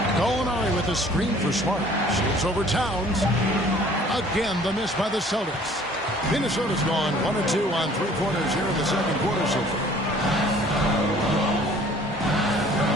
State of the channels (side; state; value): both; normal; correlation 0.53